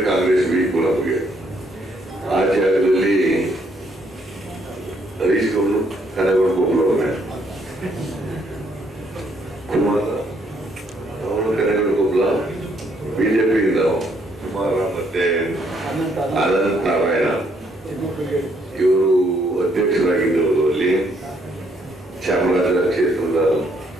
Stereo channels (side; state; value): both; normal; correlation 0.70